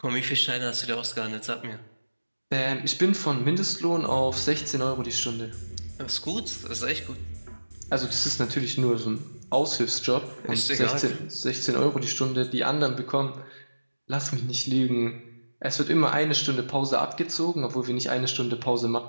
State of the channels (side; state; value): both; inverted; correlation -1.00